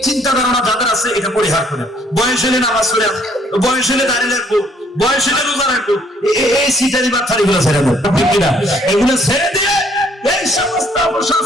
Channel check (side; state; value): both; normal; correlation 0.63